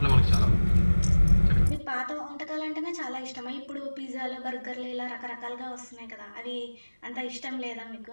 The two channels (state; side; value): inverted; both; correlation -1.00